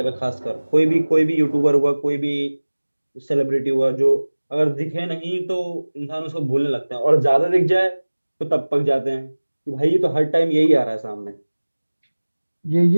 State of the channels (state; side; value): inverted; both; correlation -1.00